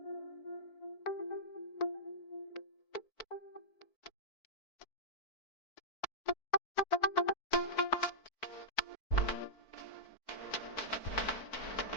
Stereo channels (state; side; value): late; right; 4.5 ms